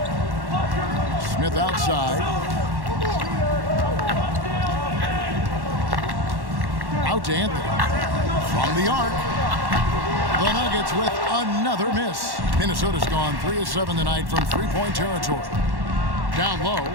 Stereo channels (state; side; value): late; left; 1.1 ms